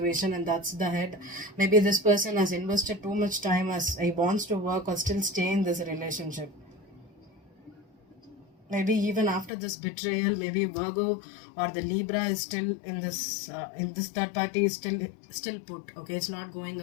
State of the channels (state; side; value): drops out; right; at 9.5 s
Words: and that's the head. Maybe this person has invested too much time as he wants to work or still stay in this relationship. Maybe even after this betrayal, maybe Virgo or the Libra is still in this third party is still put. Okay, it's not going